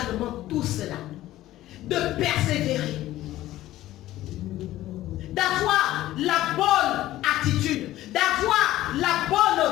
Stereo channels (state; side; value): quieter; right; 15.0 dB